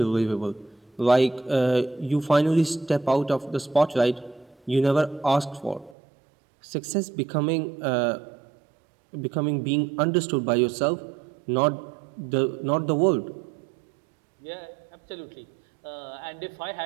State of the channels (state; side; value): drops out; left; at 6.0 s